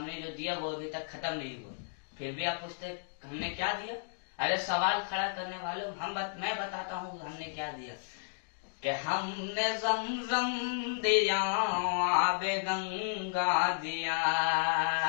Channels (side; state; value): right; silent; digital silence